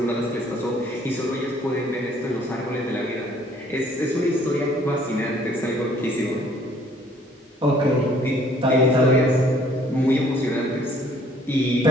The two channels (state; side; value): normal; both; correlation 0.59